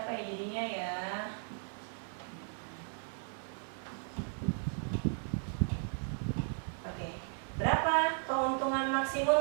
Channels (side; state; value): left; silent; 54 dB below the other